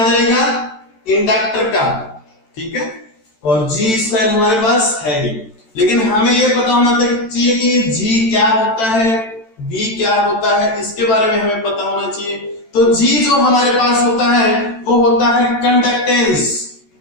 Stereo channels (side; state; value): right; late; 13 ms